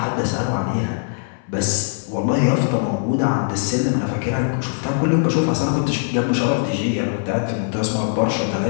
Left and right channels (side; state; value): right; silent; 61 dB below the other